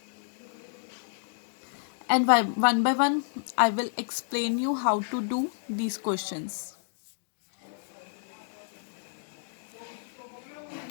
And one by one I will explain you how to do these questions.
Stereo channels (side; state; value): right; silent; digital silence